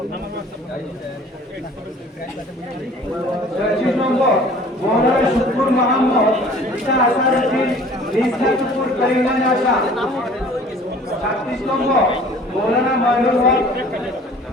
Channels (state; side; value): normal; both; correlation 0.49